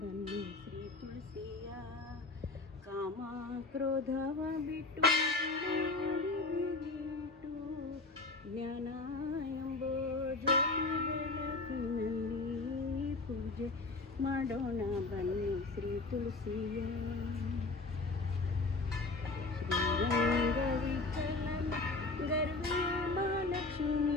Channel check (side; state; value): right; quieter; 3.4 dB